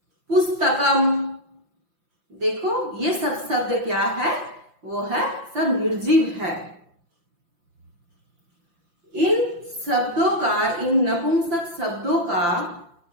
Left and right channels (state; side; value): late; left; 5.8 ms